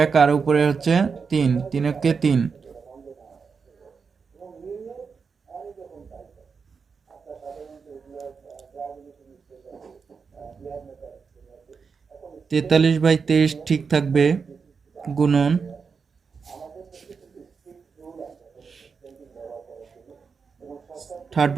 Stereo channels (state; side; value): quieter; left; 5.5 dB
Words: 1, আর উপরে 3, 3-একে 3। 43/23 ঠিক থাকবে, গুণন থার্ড